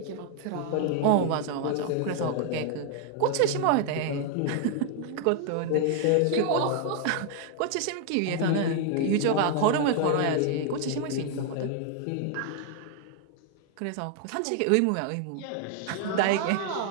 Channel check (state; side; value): different; both; correlation 0.00